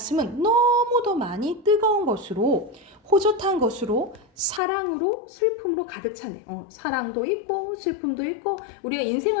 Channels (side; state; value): right; drops out; at 4.6 s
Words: 너무도 많이 뜨거운 것으로, 호젓한 것으로, 사랑으로, 슬픔으로 가득 차네. 사랑도 있고 슬픔도 있고, 우리가